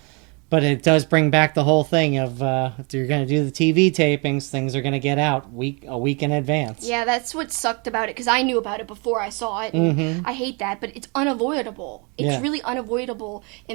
it does bring back the whole thing of if you're going to do the TV tapings, things are going to get out a week in advance. Yeah, that's what sucked about it, because I knew about it before I saw it. And I hate that, but it's unavoidable. It's really unavoidable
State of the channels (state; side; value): quieter; left; 32.1 dB